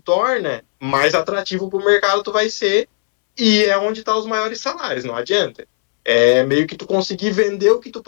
mais atrativo para o mercado tu vai ser, e é onde estão os maiores salários, não adianta. É meio que tu conseguir vender o que tu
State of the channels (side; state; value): right; silent; 66 dB below the other